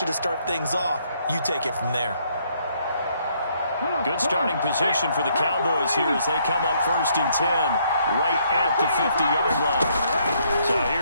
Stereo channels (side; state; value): both; inverted; correlation -0.69